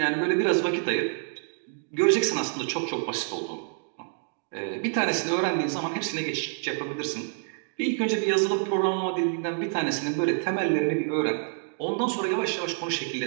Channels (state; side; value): silent; left; digital silence